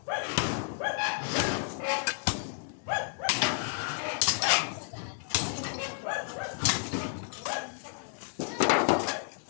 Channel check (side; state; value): right; silent; 57 dB below the other